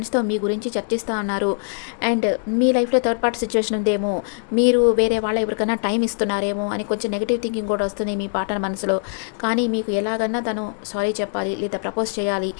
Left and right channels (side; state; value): right; silent; digital silence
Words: మీ గురించి చర్చిస్తూ ఉన్నారు. అండ్ మీ లైఫ్లో థర్డ్ పార్టీ సిచ్యువేషన్ ఉందేమో, మీరు వేరే వాళ్ళ ఎవరికైనా టైం ఇస్తున్నారేమో అని కొంచెం నెగిటివ్ థింకింగ్ కూడా వస్తుంది మీ పార్ట్నర్ మనసులో. కానీ మీకు ఎలాగన్నా తను సారీ చెప్పాలి లేదా ప్రపోజ్ చేయాలి,